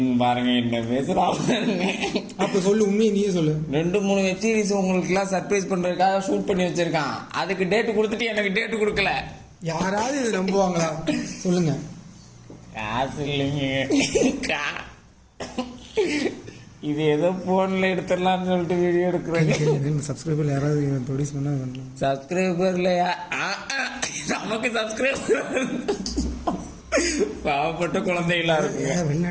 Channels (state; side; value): identical; both; correlation 1.00